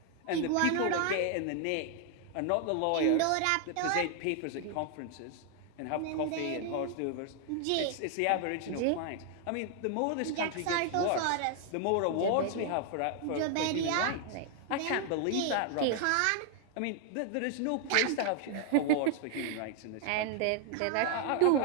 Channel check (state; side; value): different; both; correlation 0.00